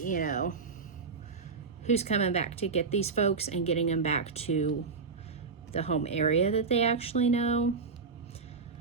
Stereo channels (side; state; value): left; quieter; 4.8 dB